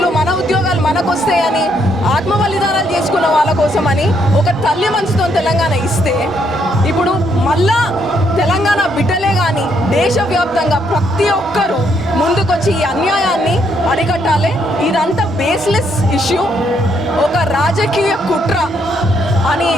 మన ఉద్యోగాలు మనకొస్తాయని ఆత్మ బలిదానాలు చేసుకున్న వాళ్ళ కోసమని ఒక తల్లి మనసుతో తెలంగాణ ఇస్తే ఇప్పుడు మళ్ళా తెలంగాణ బిడ్డలే కానీ దేశవ్యాప్తంగా ప్రతి ఒక్కరూ ముందుకొచ్చి ఈ అన్యాయాన్ని అరికట్టాలి. ఇదంతా బేస్లెస్ ఇష్యూ, ఒక రాజకీయ కుట్ర. అని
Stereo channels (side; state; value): both; normal; correlation 0.73